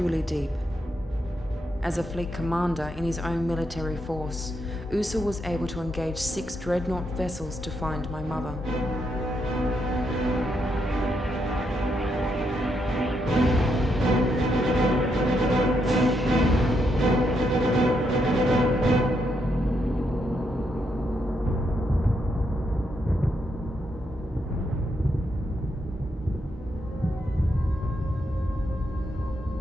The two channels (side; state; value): both; normal; correlation 0.79